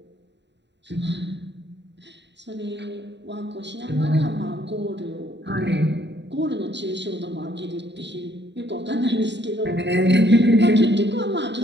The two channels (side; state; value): left; late; 0.51 ms